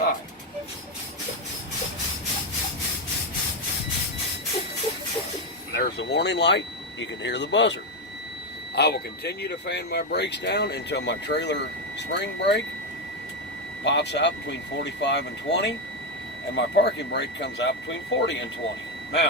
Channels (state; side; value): normal; both; correlation 0.08